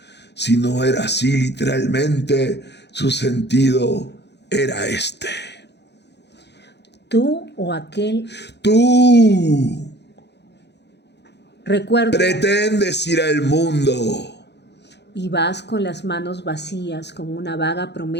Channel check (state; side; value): late; right; 0.50 ms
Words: Si no era así literalmente, su sentido era este. ¿Tú o aquel? Tú Recuerda. pretendes ir al mundo Y vas con las manos vacías, con una vaga